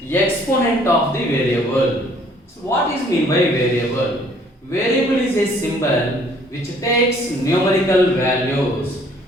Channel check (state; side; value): normal; both; correlation 0.60